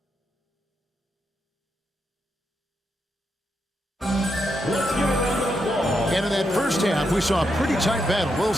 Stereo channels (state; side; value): normal; both; correlation 0.82